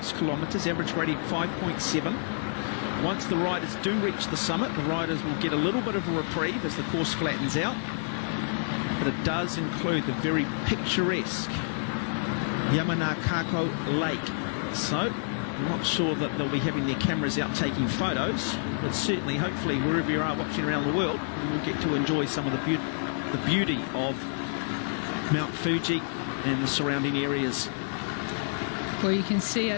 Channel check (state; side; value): silent; right; digital silence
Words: kilometres, average gradient 5.7. Once the riders do reach the summit, the riders will get a little bit of a reprieve as the course flattens out. But it does include the very picturesque Yamanakako Lake. So I'm not sure that they'll be having their cameras out taking photos, but certainly, hopefully, wherever you are watching around the world, you will get to enjoy some of the beauty of Mount Fuji and the surrounding areas. Well, you can see